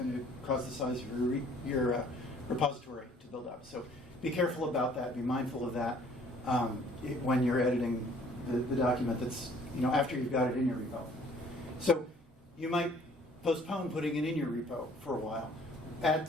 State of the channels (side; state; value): both; normal; correlation 0.56